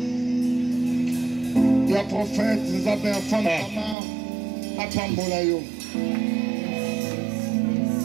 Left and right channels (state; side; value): drops out; left; at 4.0 s